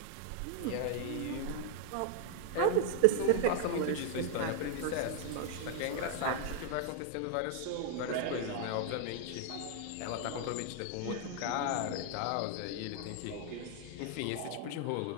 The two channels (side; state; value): both; different; correlation 0.00